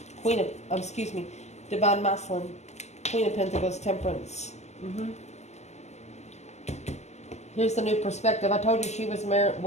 Divine Masculine. Queen of Pentacles, Temperance. Here's the new perspective. I told you she was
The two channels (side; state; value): right; late; 0.33 ms